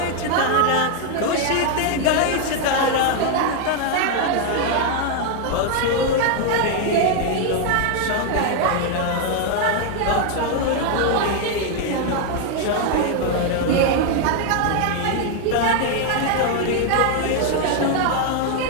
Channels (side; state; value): both; different; correlation 0.01